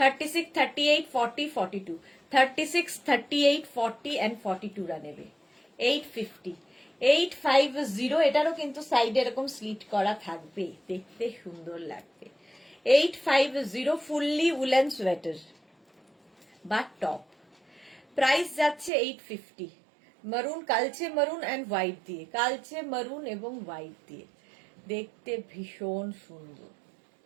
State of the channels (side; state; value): left; drops out; at 18.9 s